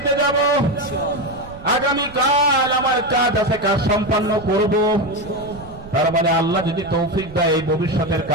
যাব, আগামীকাল আমার কাজ আছে, কাজ সম্পন্ন করব। তার মানে আল্লাহ যদি তৌফিক দেয়, এই ভবিষ্যতের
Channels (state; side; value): noise; right; rumble, 17 dB below the sound